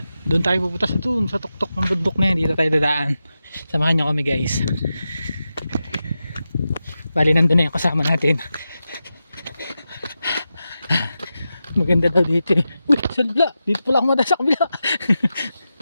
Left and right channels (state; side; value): inverted; both; correlation -0.91